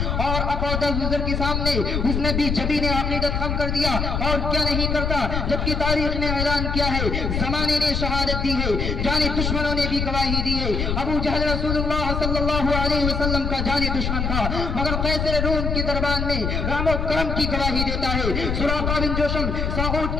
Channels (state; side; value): noise; left; rumble, 1 dB below the sound